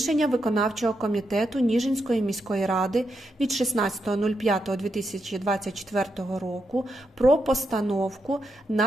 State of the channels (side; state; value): both; normal; correlation 0.82